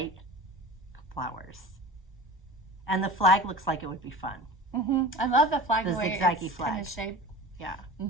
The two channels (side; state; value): both; normal; correlation 0.36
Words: flowers. And the flag looks like it would be fun. I love the flag, the way zigzaggy it's flag. kind of shaped. Yeah.